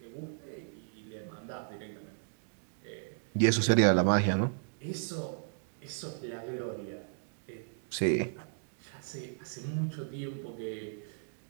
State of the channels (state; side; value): silent; left; digital silence